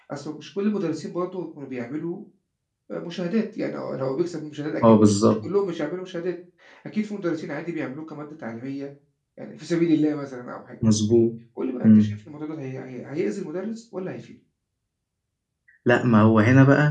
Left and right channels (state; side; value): identical; both; correlation 1.00